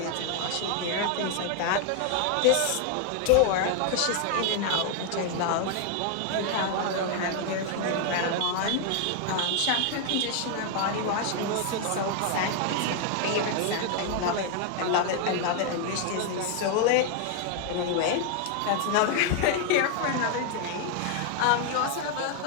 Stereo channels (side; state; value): both; different; correlation 0.01